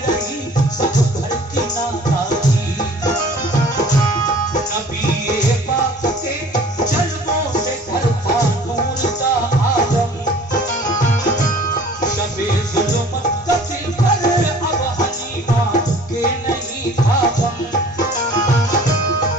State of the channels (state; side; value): normal; both; correlation 0.49